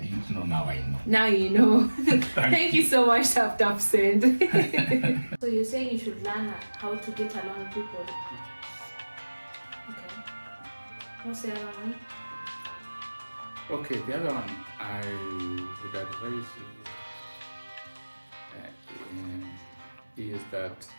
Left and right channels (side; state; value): both; inverted; correlation -1.00